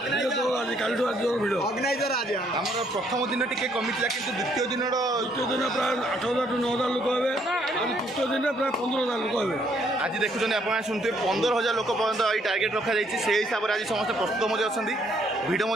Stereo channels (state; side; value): normal; both; correlation 0.68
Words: ଆଜି କାଲିଠୁ ଆଜି ଜୋର ଭିଡ଼। ଆମର ପ୍ରଥମ ଦିନ ଟିକେ କମିଥିଲା, କିନ୍ତୁ ଦ୍ୱିତୀୟ ଦିନର ତୃତୀୟ ଦିନ ପ୍ରାୟ 8000ରୁ 9000 ଲୋକ ହେବେ। ଆଉ ତୃତୀୟ ଦିନରେ ପ୍ରାୟ 15000 ଲୋକ ହେବେ। ଆଜି ଦେଖୁଛନ୍ତି ଆପଣ ଶୁଣୁଥିବେ 15000 ଲୋକ ପର୍ଯ୍ୟନ୍ତ ଏଇ ଟାର୍ଗେଟ୍ ରଖାଯାଇଛି। ସେହି ହିସାବରେ ଆଜି ସମସ୍ତେ ପ୍ରସ୍ତୁତ ମଧ୍ୟ ଅଛନ୍ତି। ଭିଡ଼